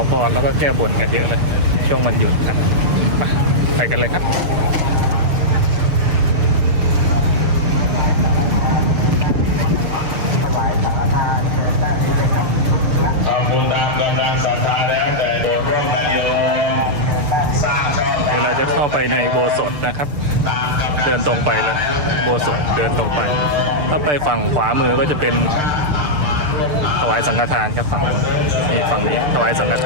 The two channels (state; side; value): late; left; 6.7 ms